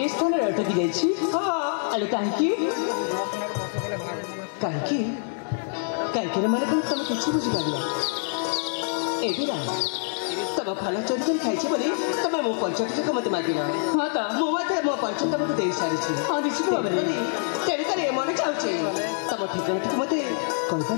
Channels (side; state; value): right; silent; 61 dB below the other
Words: स्थान अटकी जाइए हाँ अरे कहीं କାହିଁକି ମାନେ ତମେ କିଛି ବୁଝିପାରିଲ ଏଗୁଡ଼ା ତମ ଭଲ ଚୋରି କରି ଖାଇଛି ବୋଲି ତମେ ମୋ ପରିଚୟଟିକୁ ମୋତେ ମାଗିଲ। ହଁ ତ ମୁଁ ମଧ୍ୟ ମୋ ପରିଚୟ ତମକୁ ଦେଇସାରିଛି। ହଁ ନିଶ୍ଚିତ ଭାବରେ ତେଣୁକରି ମନେ ଚାହୁଁଛି ତମ ଠିକଣାଟିକୁ ମୋତେ